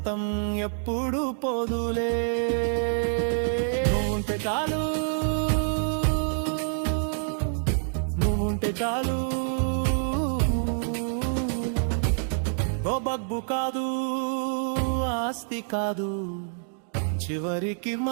ఎప్పుడు పోదులే. నువ్వుంటే చాలు, నువ్వుంటే చాలు. ఓ బగ్గు కాదు, ఆస్తి కాదు, చివరికి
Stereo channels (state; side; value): silent; left; digital silence